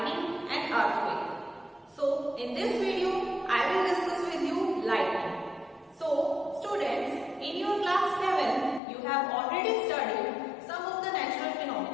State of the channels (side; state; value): right; drops out; at 8.8 s